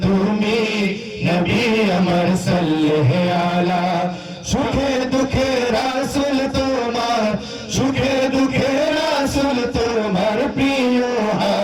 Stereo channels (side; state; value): both; identical; correlation 1.00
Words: তুমি নবী আমার সাল্লাল্লাহু আলা। সুখে দুঃখে রাসূল তোমার, সুখে দুঃখে রাসূল তোমার প্রিয়